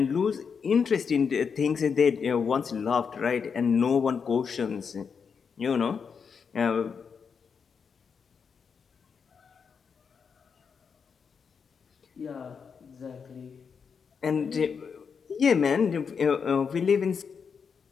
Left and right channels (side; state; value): right; quieter; 6.1 dB